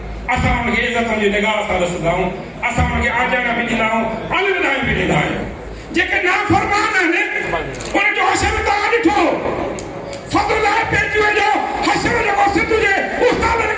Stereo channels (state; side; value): identical; both; correlation 1.00